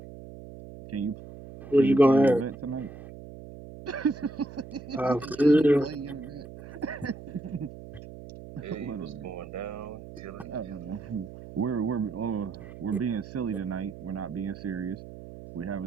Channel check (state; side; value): noise; right; hum, 14 dB below the sound